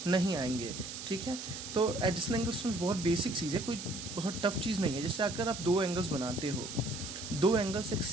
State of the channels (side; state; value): right; noise; hiss, 9 dB below the sound